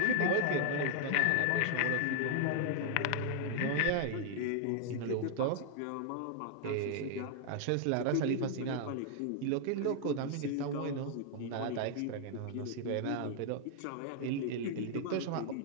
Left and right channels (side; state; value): both; different; correlation 0.00